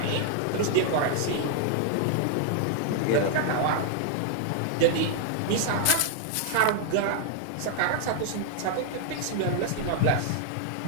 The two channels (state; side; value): different; both; correlation -0.01